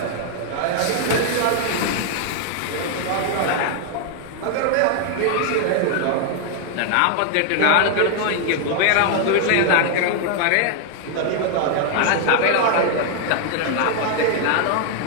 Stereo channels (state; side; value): different; both; correlation 0.00